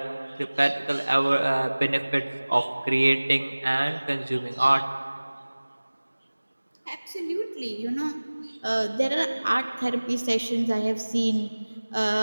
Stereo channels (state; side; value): inverted; both; correlation -1.00